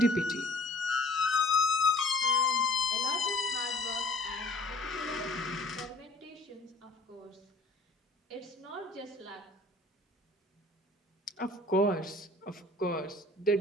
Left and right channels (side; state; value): both; normal; correlation 0.51